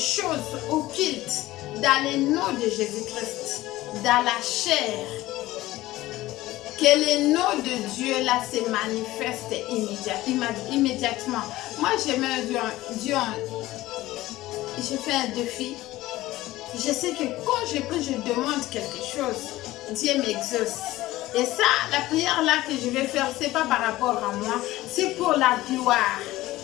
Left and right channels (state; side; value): quieter; right; 17.0 dB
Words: occultes dans le nom de Jésus-Christ, dans la chair. Que le nom de Dieu là se manifeste immédiatement. Moi j'aime Dieu je fais un défi, je sais que quand je prie, je demande quelque chose, Dieu m'exauce. Et ça, la prière là que je vais faire, c'est pas par rapport à moi, c'est pour la gloire.